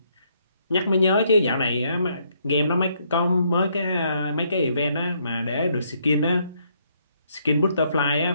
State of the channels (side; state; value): both; inverted; correlation -0.71